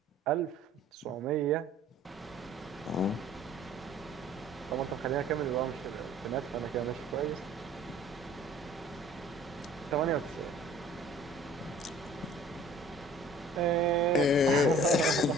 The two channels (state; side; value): normal; both; correlation 0.51